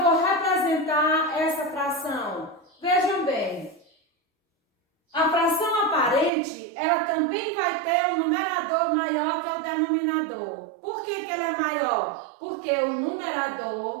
vou representar essa fração? Vejam bem, a fração aparente, ela também vai ter um numerador maior que o denominador. Por que ela é maior? Porque o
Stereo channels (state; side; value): drops out; left; at 6.3 s